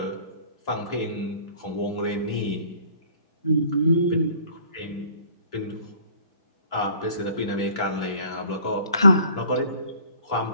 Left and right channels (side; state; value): both; inverted; correlation -0.52